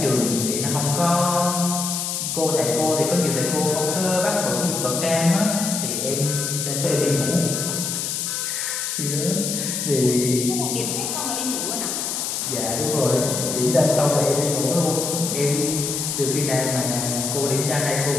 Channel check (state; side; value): noise; left; hiss, 2 dB below the sound